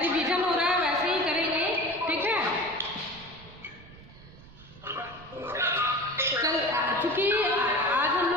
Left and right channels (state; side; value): noise; right; rumble, 20 dB below the sound